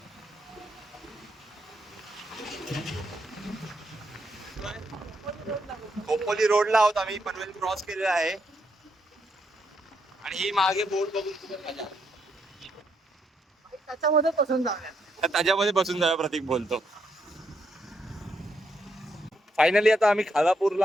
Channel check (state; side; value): normal; both; correlation 0.77